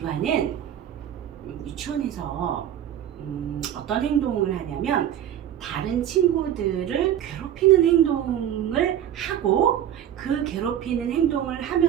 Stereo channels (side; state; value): left; quieter; 10.7 dB